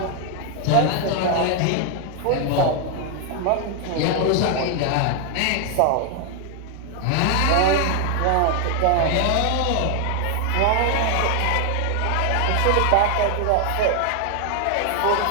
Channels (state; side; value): different; both; correlation 0.00